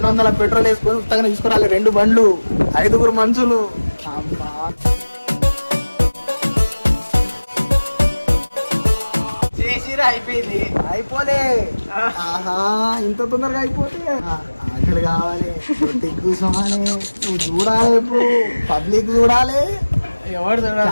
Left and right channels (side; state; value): both; inverted; correlation -1.00